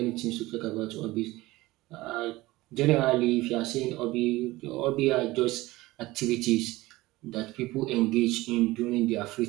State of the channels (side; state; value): left; quieter; 19.2 dB